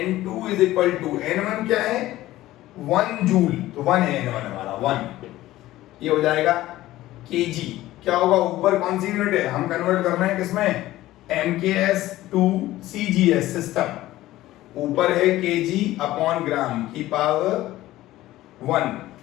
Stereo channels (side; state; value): right; quieter; 15.9 dB